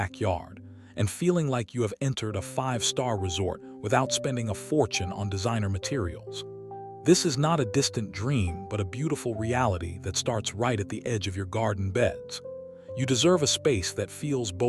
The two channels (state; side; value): identical; both; correlation 1.00